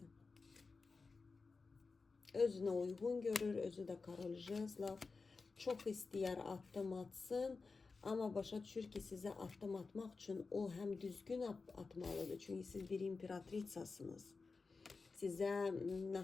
Özünə uyğun görür, özü də Karol Jezlov. Çox istəyər addım atsın, amma başa düşür ki, sizə addım atmaq üçün o həm düzgün atmalıdır. Çünki siz bir imperatritsasınız. Sizə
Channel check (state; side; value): quieter; right; 4.3 dB